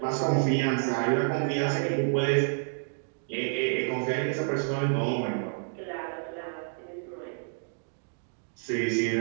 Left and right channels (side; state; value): left; silent; digital silence